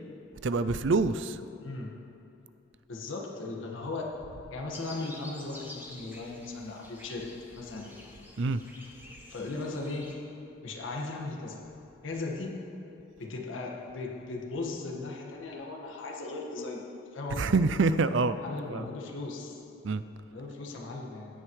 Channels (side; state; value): both; normal; correlation 0.41